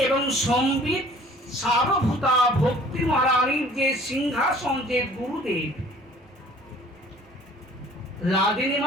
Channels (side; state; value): both; normal; correlation 0.52